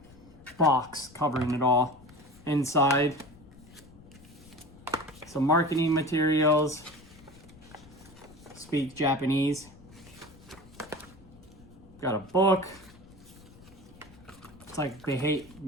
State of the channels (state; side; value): noise; left; rumble, 22 dB below the sound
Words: box covering it all. Inside, some marketing materials. Speak Japanese. Got a book. It's like they hate